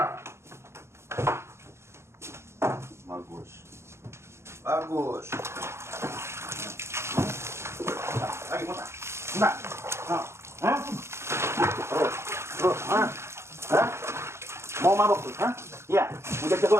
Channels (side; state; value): left; late; 0.13 ms